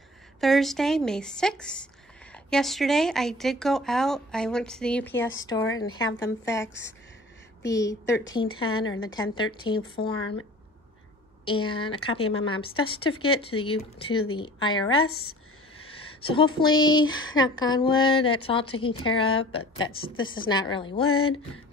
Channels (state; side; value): normal; both; correlation 0.45